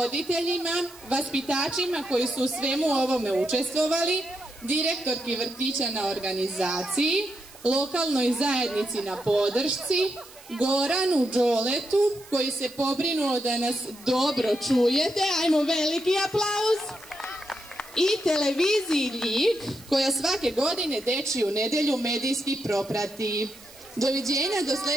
vaspitačima koji su u svemu ovome učestvovali, direktorki vrtića na organizaciji, lokalnoj zajednici na podršci, Goranu Đoletu koji se pobrinuo da nas dobro čujete. Ajmo, veliki aplauz. i televiziji Ljig, koja svake godine Dečiju nedjelju medijski proprati. Doviđenja do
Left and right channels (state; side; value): noise; right; hiss, 21 dB below the sound